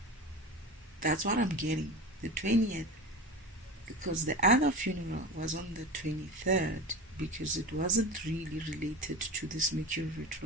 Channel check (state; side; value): normal; both; correlation 0.29